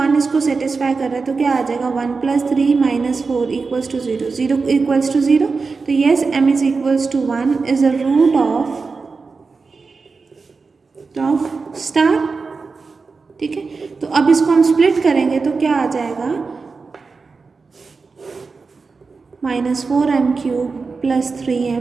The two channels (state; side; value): quieter; left; 4.5 dB